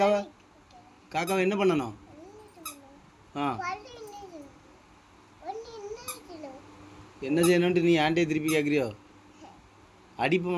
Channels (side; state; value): both; identical; correlation 1.00